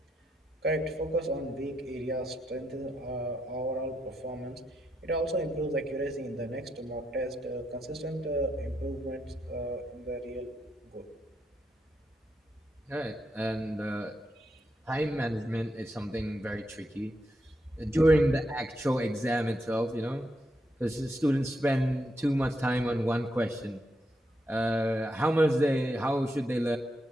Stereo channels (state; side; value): normal; both; correlation 0.81